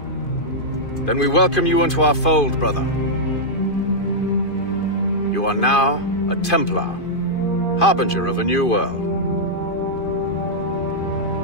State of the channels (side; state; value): right; late; 2.5 ms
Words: Then we welcome you into our fold, brother. You are now a Templar, harbinger of a new world.